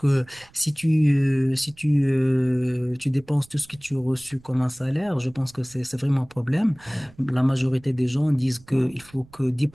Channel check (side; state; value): right; noise; rumble, 26 dB below the sound